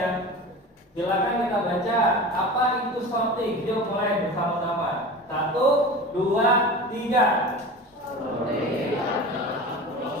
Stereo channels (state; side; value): normal; both; correlation 0.33